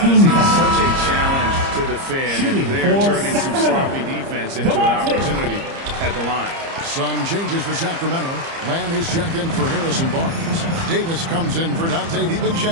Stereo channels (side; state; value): left; late; 30 ms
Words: he's foul. such a challenge to defend, Shooting and they're for turning some sloppy defense into an opportunity at the line. Some changes for Sacramento. Lamb is checked in for Harrison Barnes. Davis comes in for Dante